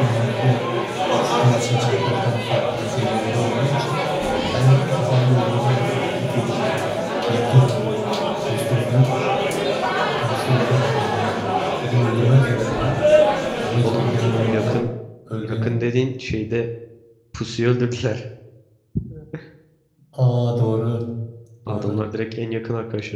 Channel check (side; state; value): both; identical; correlation 1.00